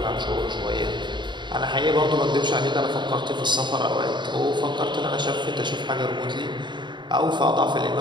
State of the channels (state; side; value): late; left; 0.22 ms